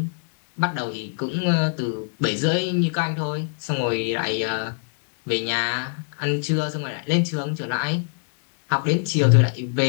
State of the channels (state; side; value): silent; right; digital silence